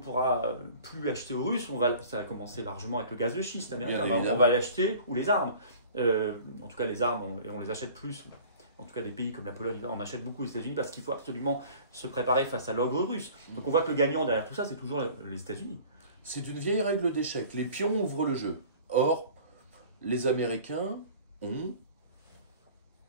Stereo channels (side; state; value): both; inverted; correlation -0.46